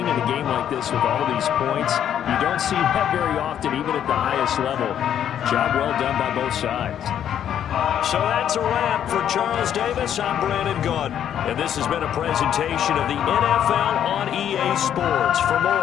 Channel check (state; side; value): quieter; right; 9.8 dB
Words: in a game like this with all these points, you don't see that very often, even at the highest level. Job well done by both sides. So that's a wrap for Charles Davis. I'm Brandon Gaudin, and this has been a presentation of the NFL on EA Sports. For